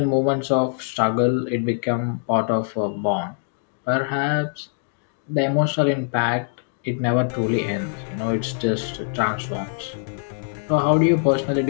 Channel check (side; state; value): right; silent; digital silence